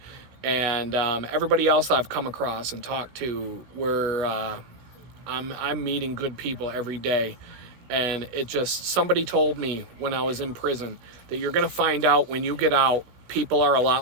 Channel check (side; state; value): left; late; 16 ms